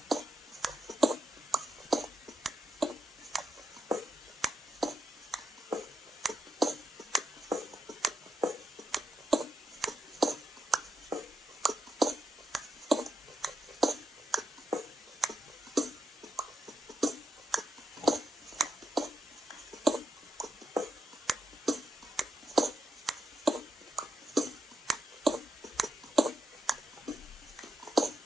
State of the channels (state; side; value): normal; both; correlation 0.84